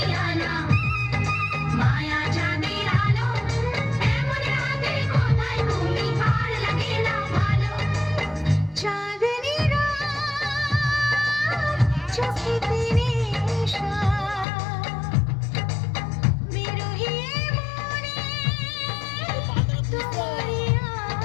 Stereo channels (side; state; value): right; drops out; at 14.5 s